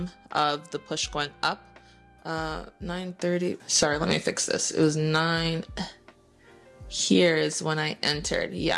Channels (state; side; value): identical; both; correlation 1.00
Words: of the push going up. 9:30. Sorry, let me fix this. It was 9. Here is when I entered.